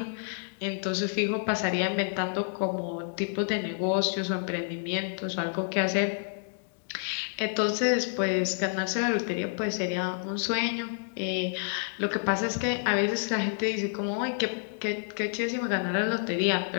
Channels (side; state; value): right; silent; digital silence